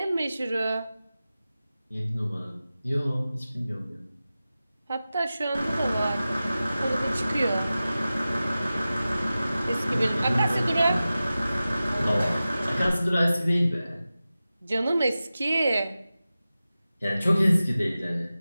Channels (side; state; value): both; inverted; correlation -0.95